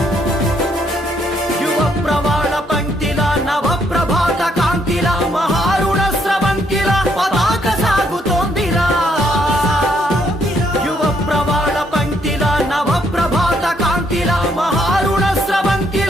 యువ ప్రవాళ పంక్తిల నవ ప్రభాత కాంతిల మహారుణ స్రవంతిల పతాక సాగుతోందిరా యువ ప్రవాళ పంక్తిల నవ ప్రభాత కాంతిల మహారుణ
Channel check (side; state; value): both; normal; correlation 0.72